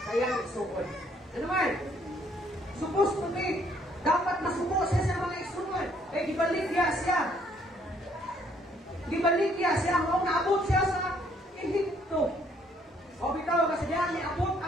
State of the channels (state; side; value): normal; both; correlation 0.66